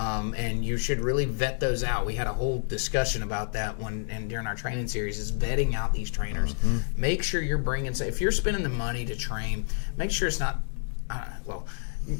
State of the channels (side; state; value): right; silent; digital silence